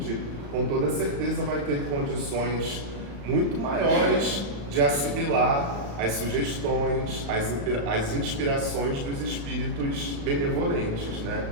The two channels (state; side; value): late; left; 35 ms